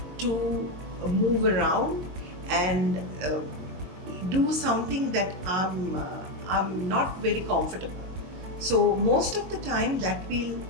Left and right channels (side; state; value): left; late; 22 ms